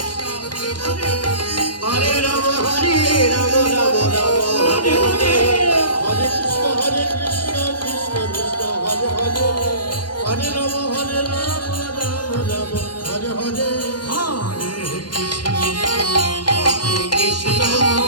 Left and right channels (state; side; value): late; right; 0.71 ms